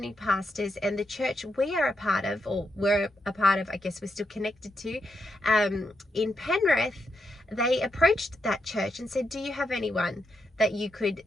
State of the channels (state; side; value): normal; both; correlation 0.83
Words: pastors. And the church we are a part of, I guess we're still connected to, in Penrith, they approached that church and said, do you have anyone that you could